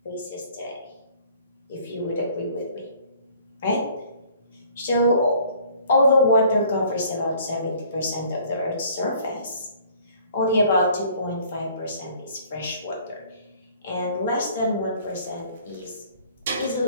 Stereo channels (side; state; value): both; inverted; correlation -0.56